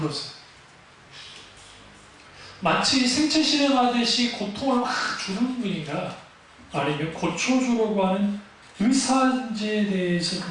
마치 생체 실험하듯이 고통을 막 주는 분인가? 아니면 고쳐주려고 하는 의사인지에 대해서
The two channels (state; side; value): identical; both; correlation 1.00